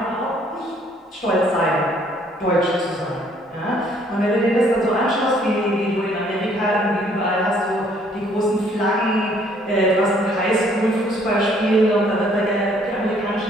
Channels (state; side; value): normal; both; correlation 0.63